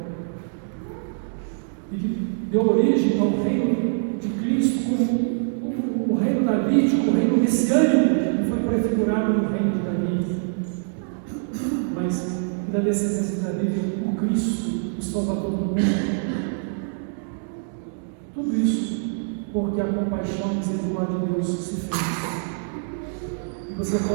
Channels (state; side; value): silent; left; digital silence